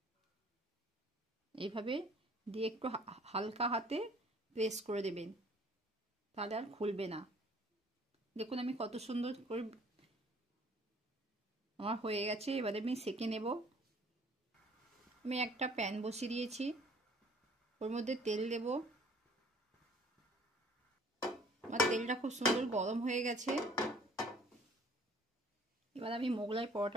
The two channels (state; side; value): normal; both; correlation 0.55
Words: এইভাবে দিয়ে একটু হালকা হাতে প্রেস করে দেবেন, তাহলে আর খুলবে না। দেখুন আমি কত সুন্দর করে আমার হয়ে গেছে। এবারে আমি সেঁকে নেব। আমি একটা প্যান বসিয়ে দিয়েছি, ওর মধ্যে তেল দেব। আমার তেলটা খুব সুন্দর গরম হয়ে গেছে। এবার আমি মোগলাই